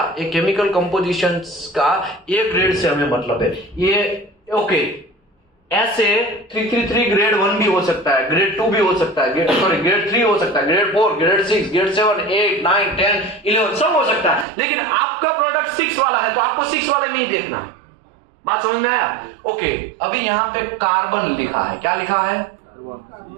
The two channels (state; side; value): drops out; left; at 14.5 s